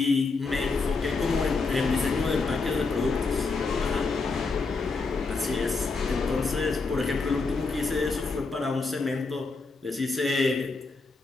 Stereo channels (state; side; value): quieter; right; 4.1 dB